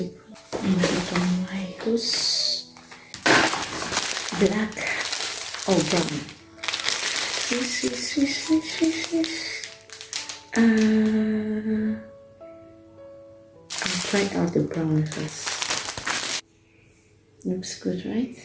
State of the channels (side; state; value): both; identical; correlation 1.00